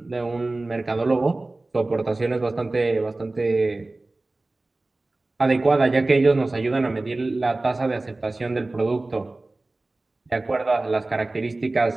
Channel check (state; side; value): quieter; left; 3.0 dB